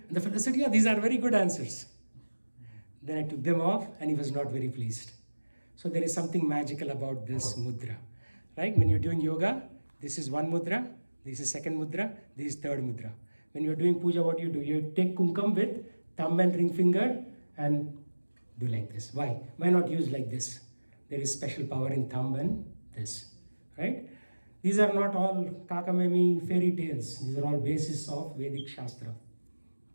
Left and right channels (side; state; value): both; inverted; correlation -1.00